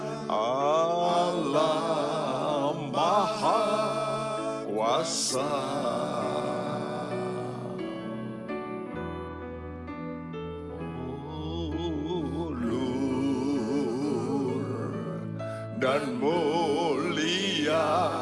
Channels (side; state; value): both; identical; correlation 1.00